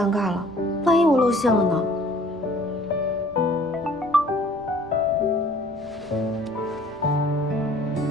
尬了，万一我露馅了呢？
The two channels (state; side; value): normal; both; correlation 0.54